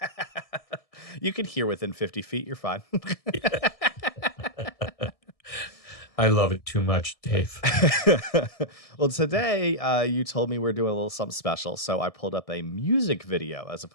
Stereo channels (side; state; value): right; late; 1.6 ms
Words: You can hear within 50 feet, you're fine. I love it too much, Dave. Well, today you told me we're doing a little something special, so I pulled up a music video as